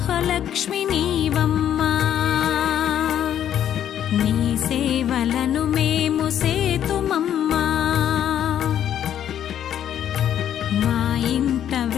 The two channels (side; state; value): right; quieter; 10.2 dB